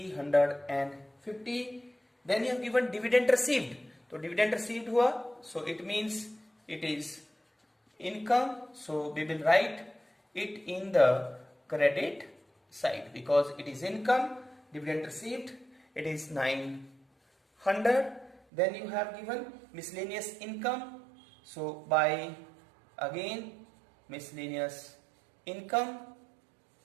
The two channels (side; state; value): left; drops out; at 18.4 s